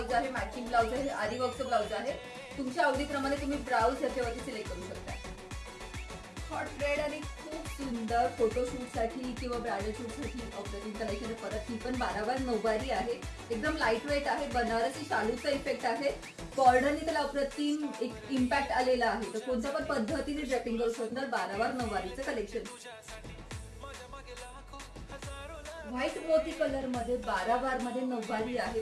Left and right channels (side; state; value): both; identical; correlation 1.00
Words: आहे, मॅचिंग ब्लाउज आहे, आरी वर्कचं ब्लाउज आहे। तुमच्या आवडीप्रमाणे तुम्ही ब्लाउज याच्यावरती सिलेक्ट करू शकता। हॉट रेड आणि खूप सुंदर फोटोशूट साठी किंवा ब्रायडल शूट साठी अप्रतिम कलेक्शन आहे। परत ही पण 12 वार नऊवारी आहे, एकदम लाईट वेट आहे, बनारसी शालूचा इफेक्ट आहे। बॉर्डरने त्याला अप्रतिम एक इम्पॅक्ट आलेला आहे। तर कोणत्या पण पद्धतीने ड्रेपिंग करू शकणार 12 वार नऊवारीचं कलेक्शन। व्हाईट मोती कलर मध्ये 12 वार मध्ये नऊवारी आहे,